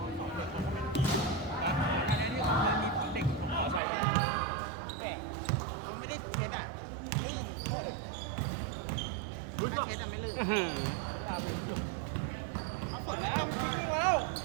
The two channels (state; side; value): drops out; left; at 3.8 s